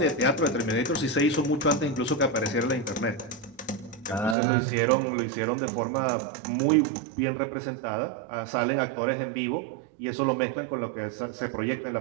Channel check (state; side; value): drops out; left; at 4.4 s